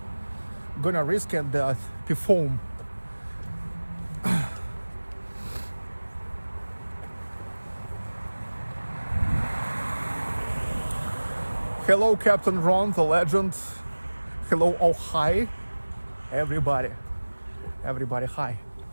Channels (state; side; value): inverted; both; correlation -1.00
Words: and perform. Hello, Captain Ron, the legend. Hello, oh hi, everybody, hi.